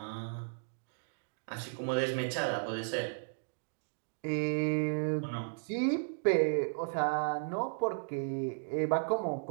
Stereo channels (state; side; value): silent; left; digital silence